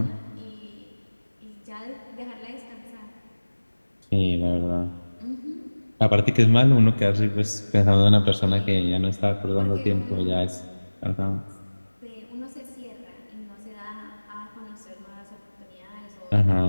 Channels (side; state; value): both; inverted; correlation -1.00